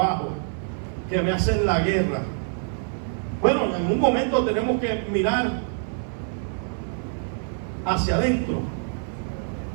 que me hacen la guerra. Bueno, en un momento tenemos que mirar hacia adentro,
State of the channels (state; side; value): silent; left; 56 dB below the other